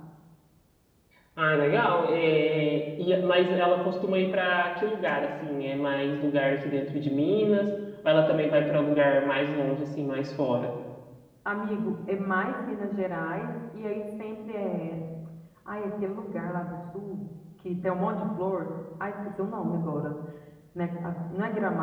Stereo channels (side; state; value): both; identical; correlation 1.00